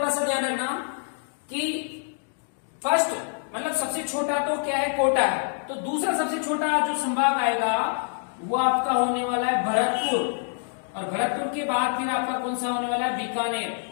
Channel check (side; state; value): right; silent; 61 dB below the other